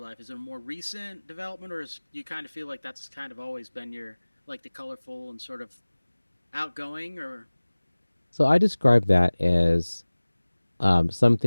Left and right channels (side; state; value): both; inverted; correlation -1.00